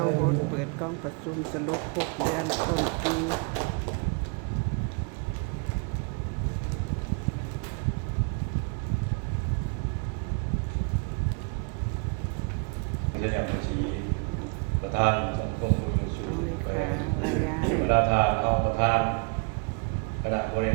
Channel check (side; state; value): left; quieter; 34.7 dB